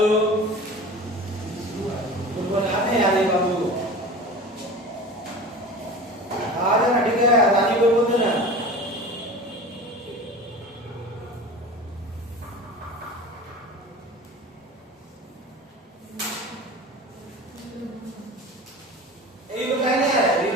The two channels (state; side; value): normal; both; correlation 0.36